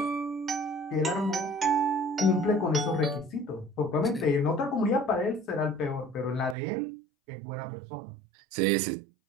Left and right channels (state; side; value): drops out; left; at 6.6 s